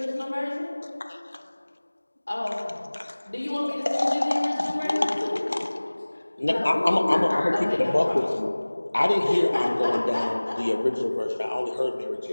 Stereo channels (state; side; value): inverted; both; correlation -1.00